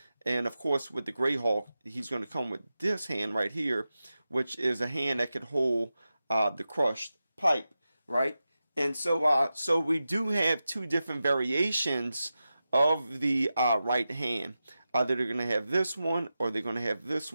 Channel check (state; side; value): inverted; both; correlation -0.92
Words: and of course with the Gray Hulk, he's going to come with this hand right here, which is a hand that could hold the crushed pipe, right? And so we do have 2 different variations of the right hand. Either they're going to have this one or they're going to have this